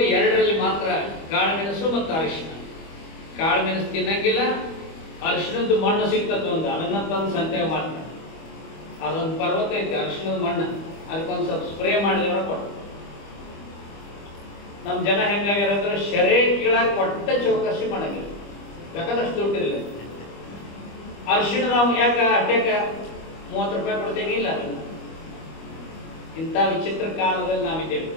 2ರಲ್ಲಿ ಮಾತ್ರ, ಕಾಳು ಮೆಣಸು ಮತ್ತು ಅರಿಶಿನ. ಕಾಳು ಮೆಣಸು ತಿನ್ನಂಗಿಲ್ಲ. ಅರಿಶಿನದ್ದು ಮಣ್ಣು ಸಿಗ್ತದೆ ಒಂದು, ಅದನ್ನ ತಂದು ಸಂತೆಗೆ ಮಾಡ್ತಾರೆ. ಅದೊಂದು ಪರ್ವತ ಐತೆ ಅರಿಶಿನದ ಮಣ್ಣು, ಅದಕ್ಕೊಂದು ಸ್ವಲ್ಪ ಸ್ಪ್ರೇ ಮಾಡಿದವರ ಕೊಟ್ಟು. ನಮ್ಮ ಜನ ಹೆಂಗಾಗ್ಯಾರಂದ್ರೆ ಶರೇ ಕೀಳಾಗ ಒಟ್ಟ ಚೌಕಸಿ ಮಾಡಂಗಿಲ್ಲ. ಬೇಕಾದಷ್ಟು ದುಡ್ಡಿರಲಿಲ್ಲ. ಅರಿಶಿಣ ನಾವು ಯಾಕೆ ಅಷ್ಟೇಕ 30 ರೂಪಾಯಿ ಕೊಡ್ತೇವೆ? ಇಲ್ಲ, ಇಂಥ ವಿಚಿತ್ರ ಕಾಲದಲ್ಲಿ ನಾವಿದ್ದೇವೆ.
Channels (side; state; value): right; late; 25 ms